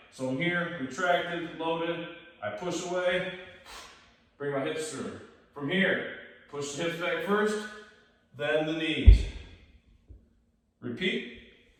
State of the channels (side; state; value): both; identical; correlation 1.00